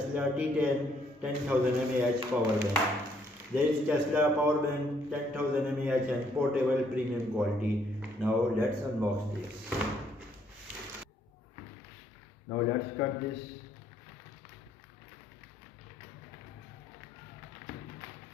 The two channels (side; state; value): both; normal; correlation 0.68